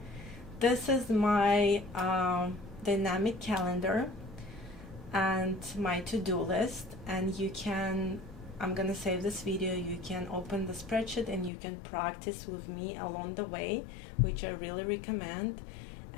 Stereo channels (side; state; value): right; drops out; at 11.5 s